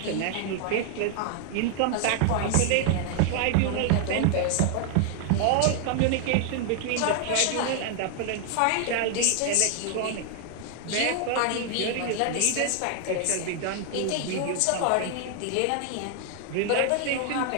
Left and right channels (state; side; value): different; both; correlation 0.00